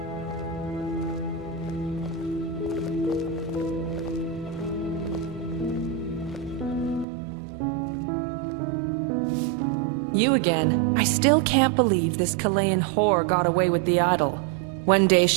You again. I still can't believe this Chilean whore got away with the idol. One day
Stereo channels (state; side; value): drops out; left; at 7.1 s